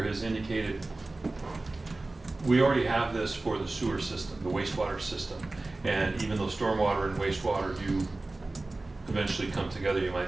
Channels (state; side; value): quieter; left; 3.1 dB